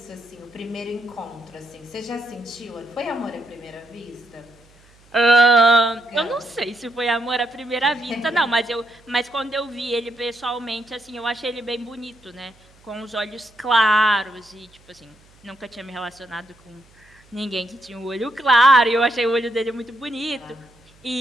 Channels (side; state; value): right; noise; hum, 29 dB below the sound